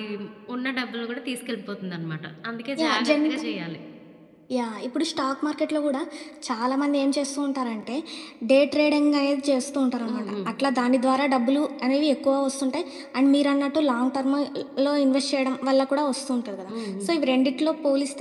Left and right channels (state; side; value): identical; both; correlation 1.00